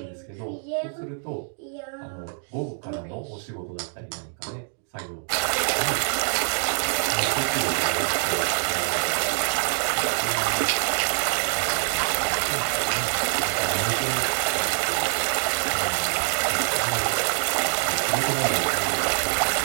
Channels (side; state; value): left; silent; 57 dB below the other